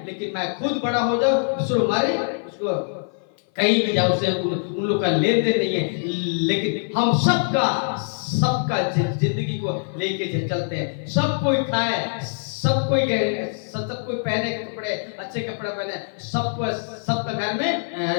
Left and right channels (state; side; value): silent; right; 55 dB below the other